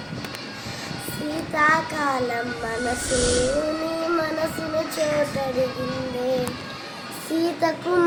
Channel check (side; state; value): both; identical; correlation 1.00